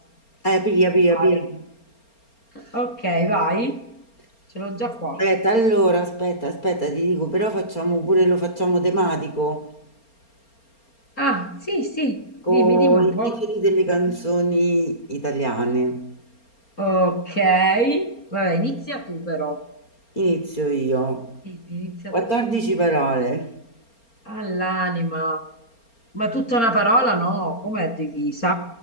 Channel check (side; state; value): right; late; 4.3 ms